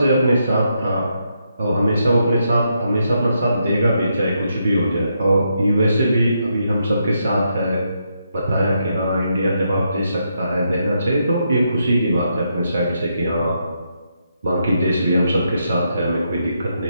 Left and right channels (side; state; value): both; inverted; correlation -0.80